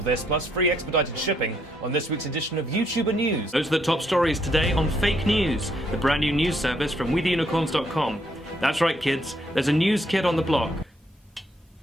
this, plus free expedited shipping on this week's edition of YouTuber News. Those are the top stories today on Fake News, the brand new news service from WeTheUnicorns.com. That's right, kids, there's a news kid on the block.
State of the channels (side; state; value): both; normal; correlation 0.72